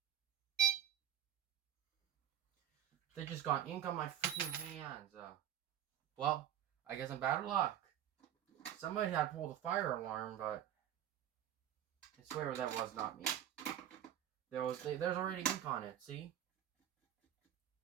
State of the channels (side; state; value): left; quieter; 10.8 dB